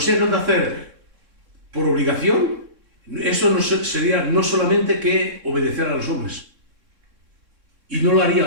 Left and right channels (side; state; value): left; late; 3.6 ms